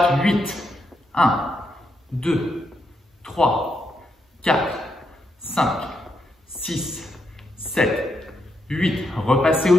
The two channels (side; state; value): both; normal; correlation 0.81